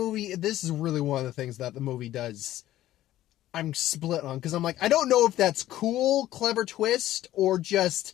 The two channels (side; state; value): right; quieter; 14.1 dB